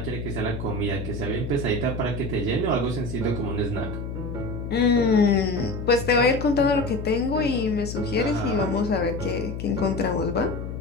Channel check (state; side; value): noise; left; hum, 6 dB below the sound